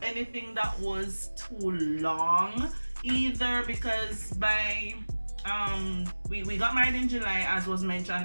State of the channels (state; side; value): inverted; both; correlation -1.00